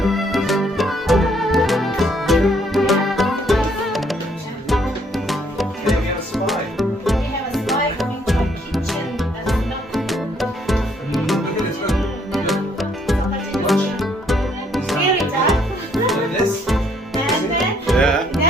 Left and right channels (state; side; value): normal; both; correlation 0.67